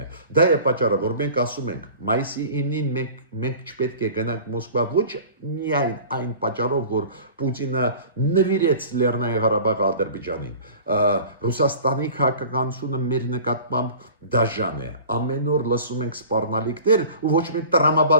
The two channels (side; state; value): both; inverted; correlation -0.42